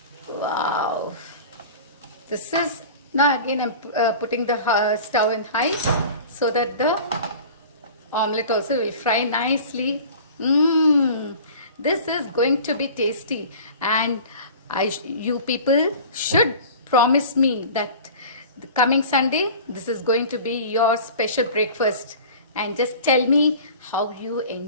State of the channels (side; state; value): both; inverted; correlation -0.40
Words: Wow, this is, now again I'm putting the stove in high, so that the omelette also will fry nicely. This is going to be tasty, and you people should promise me that the coming Sunday this is going to be your special breakfast, and just tell me how you